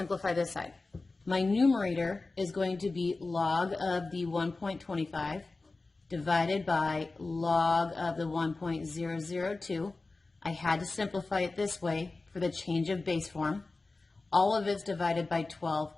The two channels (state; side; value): quieter; right; 3.5 dB